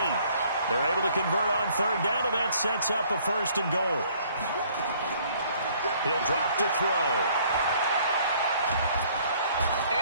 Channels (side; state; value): both; inverted; correlation -0.60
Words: They're able to convert on third down, and that sets up a 1st and goal. He'll drop to throw.